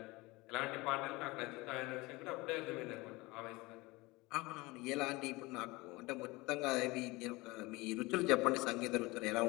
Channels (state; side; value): quieter; right; 22.6 dB